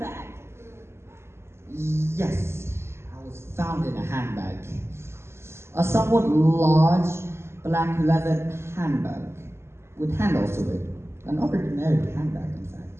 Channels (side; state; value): left; late; 0.12 ms